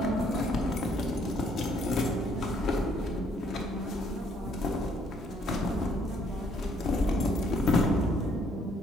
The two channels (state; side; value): normal; both; correlation 0.66